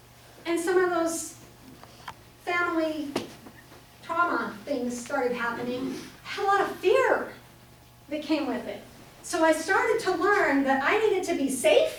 and some of those family trauma things started happening, I had a lot of fear that came with it. So I started to learn that I needed to be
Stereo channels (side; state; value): both; identical; correlation 1.00